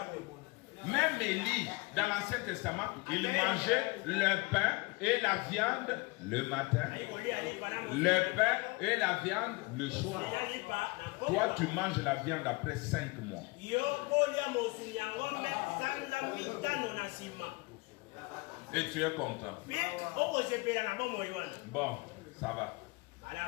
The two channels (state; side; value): quieter; right; 25.0 dB